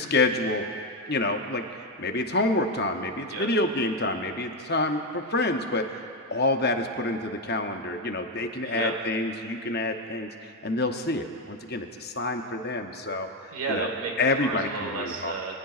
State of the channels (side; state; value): both; normal; correlation 0.08